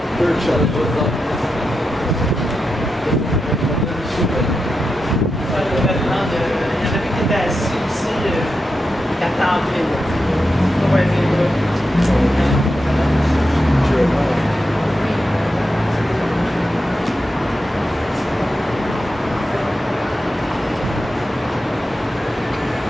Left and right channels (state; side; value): normal; both; correlation 0.88